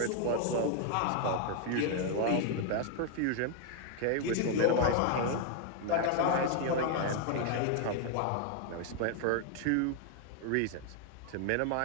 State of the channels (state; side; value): different; both; correlation 0.00